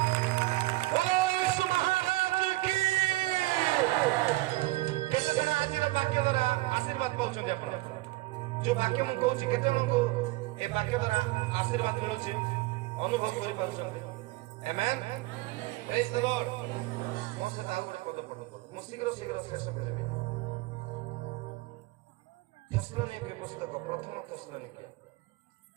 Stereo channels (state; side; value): quieter; left; 19.9 dB